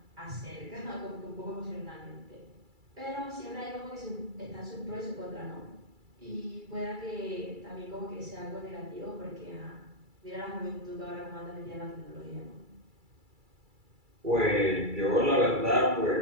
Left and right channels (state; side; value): late; left; 2.3 ms